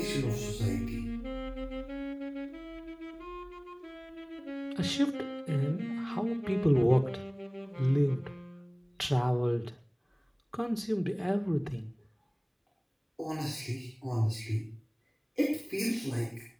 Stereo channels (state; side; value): identical; both; correlation 1.00